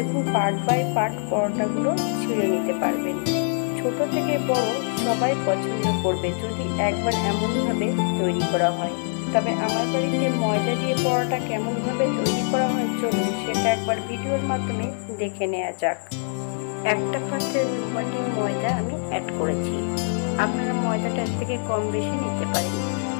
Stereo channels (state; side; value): silent; right; 57 dB below the other